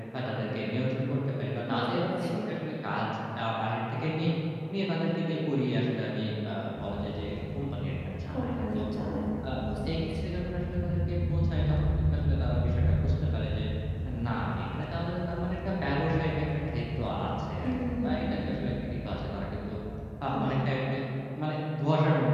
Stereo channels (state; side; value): identical; both; correlation 1.00